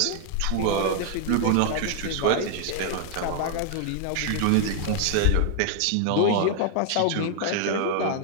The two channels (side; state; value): both; different; correlation 0.00